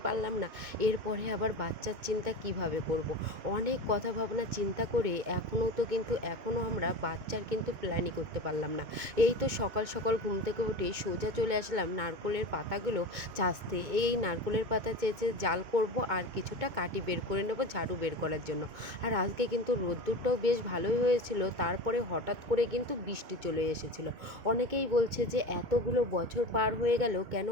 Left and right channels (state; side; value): late; left; 2.2 ms